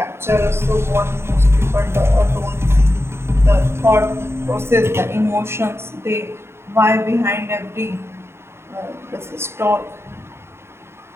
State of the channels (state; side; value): late; left; 0.12 ms